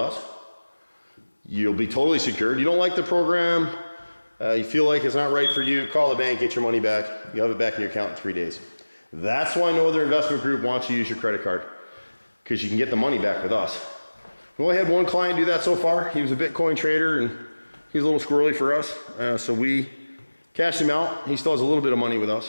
You'll be totally secured. You don't like the program, you feel like it's not right for you, call the bank, get your money back. You'll have it back in your account in 3 days. That's why no other investment group wants you to use your credit card, because you can get the money back with us. We only had one client do that so far. He was a Bitcoin trader and he's a little squirrely for us, so we cashed him out. He still has a little bit of money with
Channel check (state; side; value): inverted; both; correlation -1.00